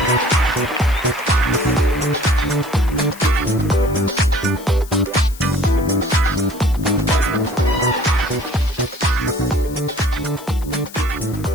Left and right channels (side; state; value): left; noise; hiss, 19 dB below the sound